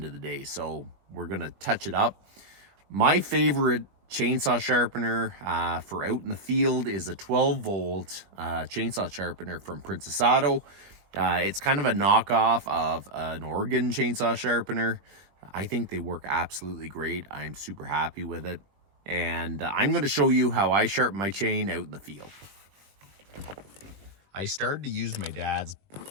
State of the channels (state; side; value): late; left; 21 ms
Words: of the day. So we're going to touch it up. My favorite chainsaw sharpener for out in the field is a 12-volt chainsaw sharpener from Princess Auto. It's kind of a knockoff of an Oregon chainsaw sharpener. I think they work absolutely great. I'm super happy with it. And I'm going to show you how I sharpen my chain out in the field. I started to use my dad's